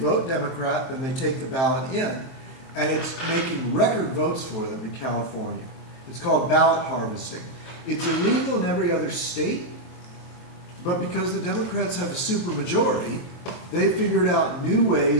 Democrat, then they take the ballot in, and it's making record votes for them in California. It's called ballot harvesting. It's illegal in every other state, but because the Democrats have a supermajority, they figured out new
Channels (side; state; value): right; late; 23 ms